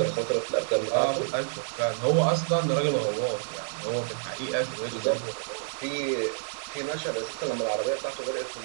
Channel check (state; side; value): silent; left; digital silence